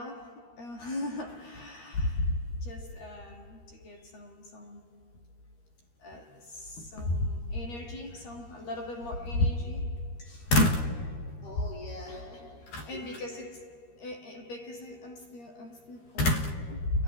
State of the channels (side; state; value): right; late; 13 ms